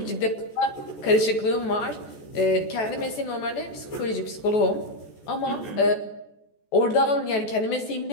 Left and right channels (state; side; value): late; right; 14 ms